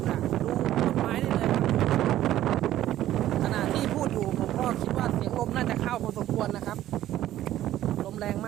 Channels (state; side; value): quieter; left; 13.3 dB